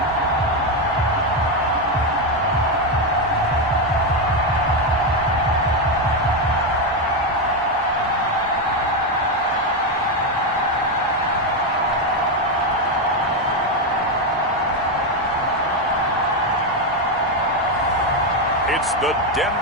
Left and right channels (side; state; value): both; normal; correlation 0.07